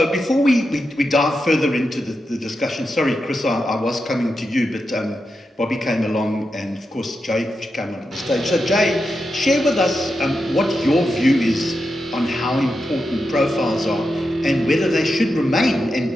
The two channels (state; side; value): normal; both; correlation 0.88